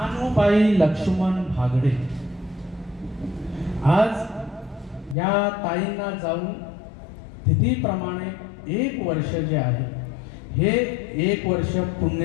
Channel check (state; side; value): drops out; right; at 5.2 s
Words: लक्ष्मण भागडे. आज या ताईंना जाऊन तिथीप्रमाणे 1 वर्ष जे आहे हे 1 वर्ष